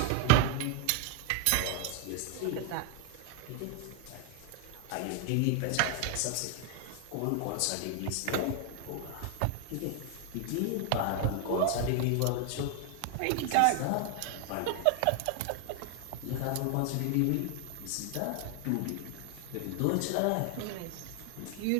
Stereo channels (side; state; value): both; different; correlation 0.01